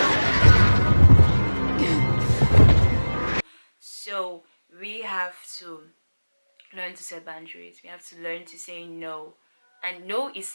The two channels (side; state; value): both; inverted; correlation -1.00